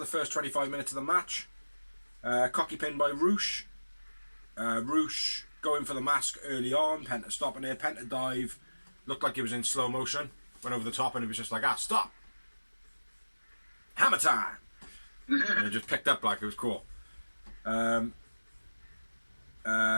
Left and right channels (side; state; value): both; inverted; correlation -1.00